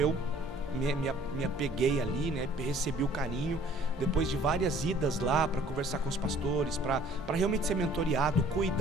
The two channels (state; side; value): normal; both; correlation 0.55